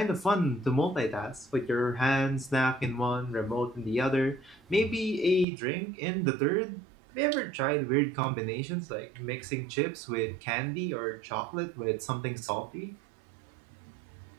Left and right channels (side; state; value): left; drops out; at 5.5 s